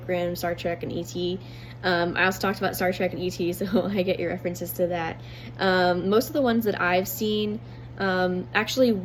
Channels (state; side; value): identical; both; correlation 1.00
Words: Rim, Star Trek, and E.T. I also talked about Star Trek and E.T., so I get your references to that. Most of the ones that I've seen actually